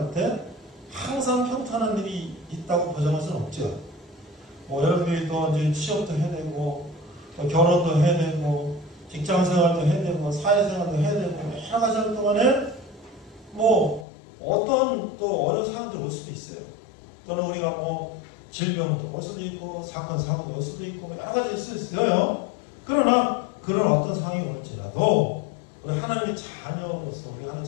때 항상 평탄한 일이 있다고 보장할 수는 없죠. 뭐 여러분들이 또 이제 취업도 해야 되고 또 결혼도 해야 되고 직장생활도 해야 되고 사회생활도 해야 되고 여러 가지 하는 동안에 뭐 어떤 또 어려운 상황도 올 수도 있어요. 또는 우리가 뭐 질병도 올 수도 있고 사건 사고도 올 수도 있고 여러 가지 있을 수 있어요. 그러나 그런 어떤 상황이 올지라도 우리 하나님의 자녀로서 우리가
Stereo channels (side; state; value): right; drops out; at 14.1 s